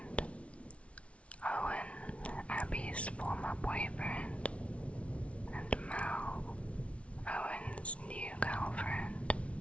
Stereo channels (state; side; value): late; right; 0.062 ms